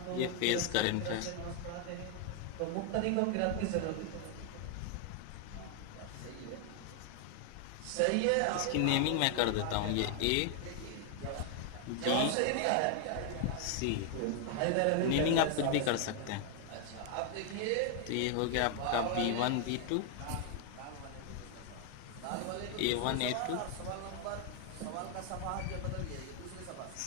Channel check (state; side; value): different; both; correlation 0.00